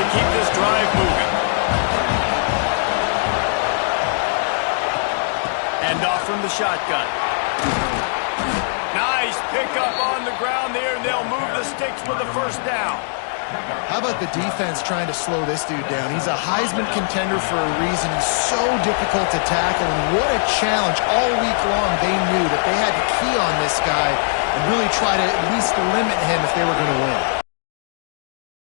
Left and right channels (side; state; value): right; silent; digital silence